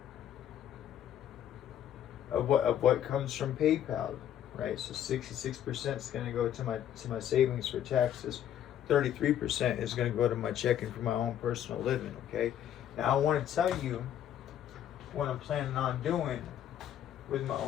of what comes from PayPal, right? So 66% is going to go to my savings for taxes. 33% is going to go to my checking for my own personal living. Okay, now I want to tell you what I'm planning on doing with my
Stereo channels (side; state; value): right; quieter; 10.5 dB